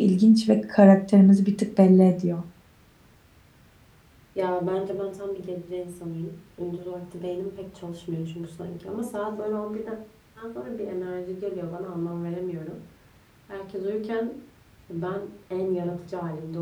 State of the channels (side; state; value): both; identical; correlation 1.00